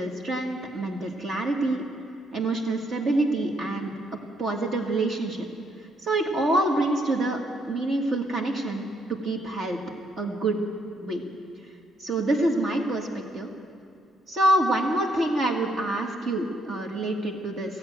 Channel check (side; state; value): both; normal; correlation 0.72